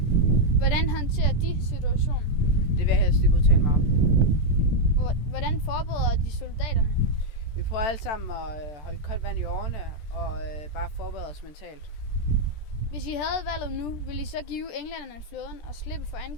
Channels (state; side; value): late; right; 14 ms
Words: Hvordan håndterer de situationen? Det vil jeg helst ikke udtale mig om. Hvordan forbereder de soldaterne? Vi prøver alle sammen at holde koldt vand i årene og bare forberede os mentalt. Hvis I havde valget nu, ville I så give englænderne flåden og slippe for